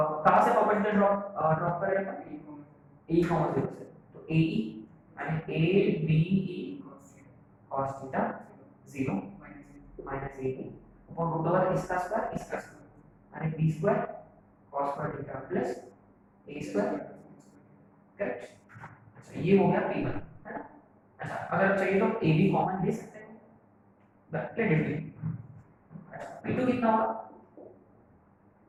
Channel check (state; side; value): identical; both; correlation 1.00